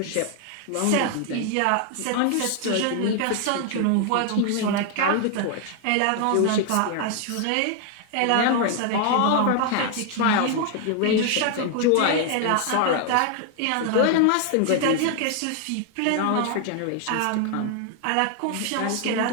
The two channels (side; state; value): both; different; correlation 0.00